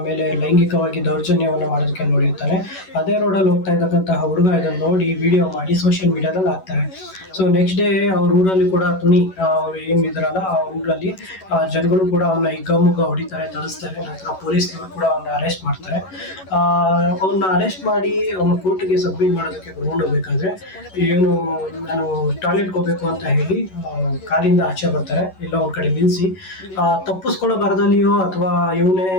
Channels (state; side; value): late; right; 11 ms